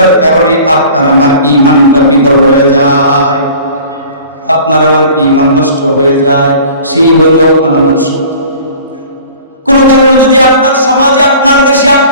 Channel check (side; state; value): both; inverted; correlation -0.45